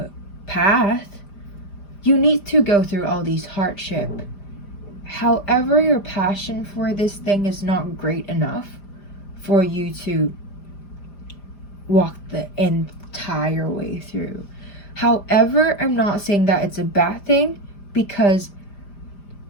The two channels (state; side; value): late; right; 5.0 ms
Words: path, you need to go through all these hardship. However, your passion for this thing is not great enough for you to walk the entire way through. However, I'm not saying that it's a bad thing, because